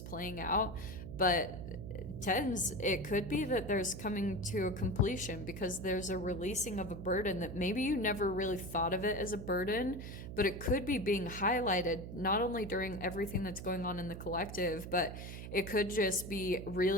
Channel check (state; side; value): noise; right; hum, 9 dB below the sound